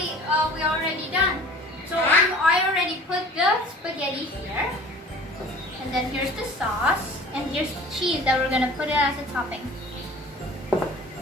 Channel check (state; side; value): normal; both; correlation 0.45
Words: already done. So I already put the spaghetti here, and then here's the sauce, and here's the cheese that we're gonna put it as a topping.